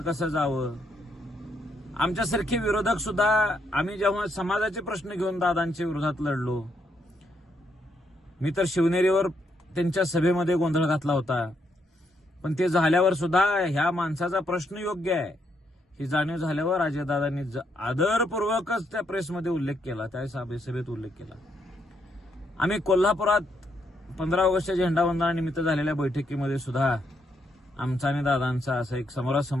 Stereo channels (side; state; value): both; normal; correlation 0.76